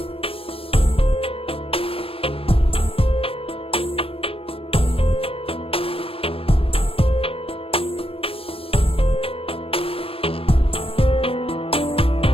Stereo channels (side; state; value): right; late; 0.27 ms